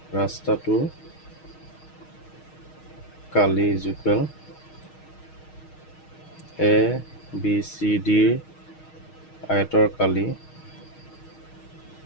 ৰাস্তাটো কালি is equal A B C ডিৰ আয়তৰ কালি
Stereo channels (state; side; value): late; right; 6.4 ms